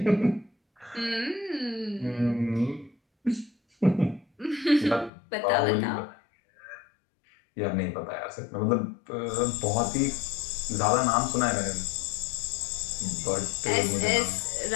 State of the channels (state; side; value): drops out; right; at 5.1 s